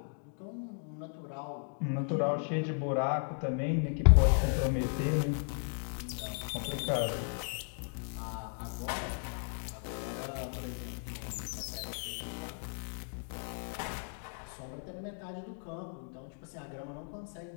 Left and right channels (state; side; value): silent; right; 54 dB below the other